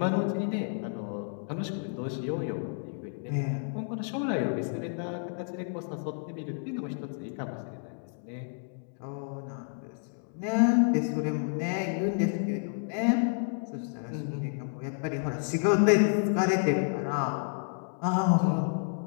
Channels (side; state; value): right; silent; 58 dB below the other